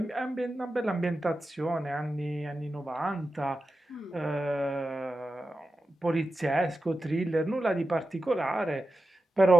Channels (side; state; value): both; normal; correlation 0.92